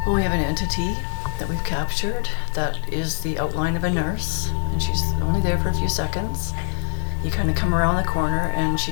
Well, we have an entity that we've captured that is the outline of a nurse, and she's only there for a few seconds. You kind of come around the corner and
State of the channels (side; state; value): right; silent; digital silence